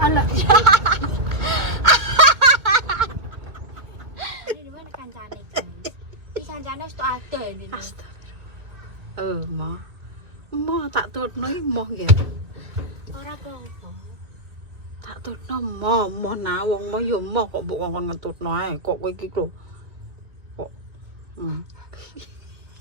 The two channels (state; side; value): late; left; 2.3 ms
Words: alah. Ini mana kancane guys? Ini kancane wis tok ada ini. Astagfirullah. Mah tak tutno iki moh ya. Ora apa-apa. Tak tutno moh nah wong moh ya moh kok mbok ngomong ngetutno ae kok kowe iki lho. Kok